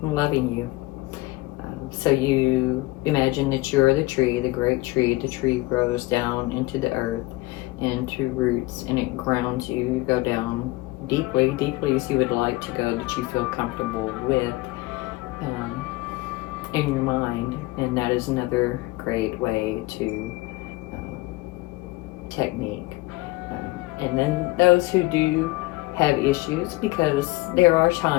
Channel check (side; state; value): right; quieter; 20.9 dB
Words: loving you. So you imagine that you're the tree, the great tree. The tree grows down into the earth, into roots, and it grounds you. You go down deeply as you would like to go, that you feel comfortable with in your mind. And that is another great way to technique. And then those who do have issues, because there are